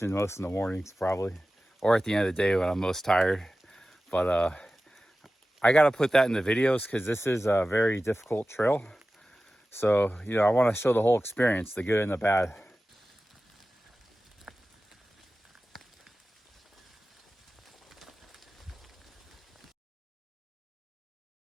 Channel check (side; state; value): both; normal; correlation 0.95